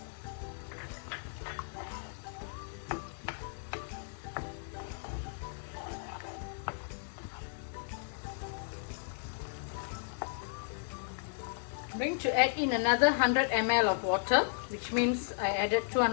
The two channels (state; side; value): silent; right; 55 dB below the other